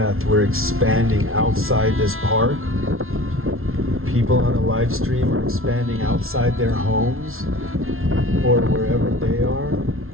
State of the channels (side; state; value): left; late; 0.62 ms